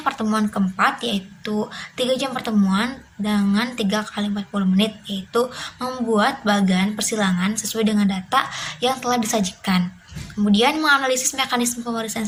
pertemuan keempat yaitu 3 jam pertemuan dengan 3 kali 40 menit, yaitu membuat bagan persilangan sesuai dengan data yang telah disajikan. Kemudian menganalisis mekanisme pewarisan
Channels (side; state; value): both; identical; correlation 1.00